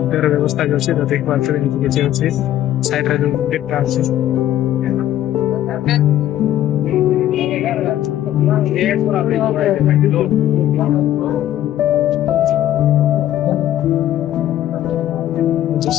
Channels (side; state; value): right; quieter; 12.5 dB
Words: तेरे व्यवस्था जो छे तो देख पारते एठी के छे अछि साइड रे जो डेटा अछि